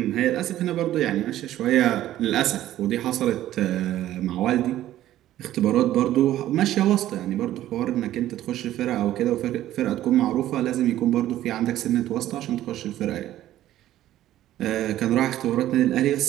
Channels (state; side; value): quieter; left; 13.4 dB